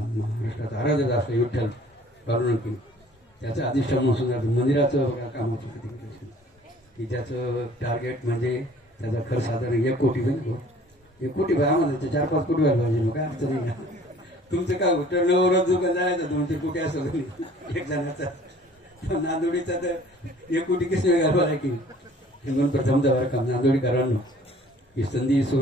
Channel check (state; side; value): normal; both; correlation 0.53